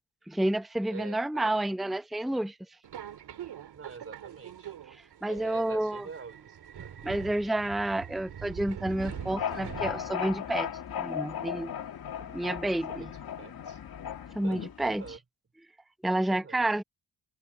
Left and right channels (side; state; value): both; normal; correlation 0.83